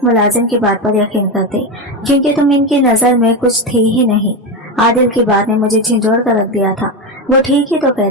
मुलाजिम की बात पर यकीन करते, क्योंकि तुम इनकी नजर में कुछ थी ही नहीं। आदिल की बात ने मुझे झिंझोड़ कर रख दिया था। वो ठीक ही तो कह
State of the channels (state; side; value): normal; both; correlation 0.14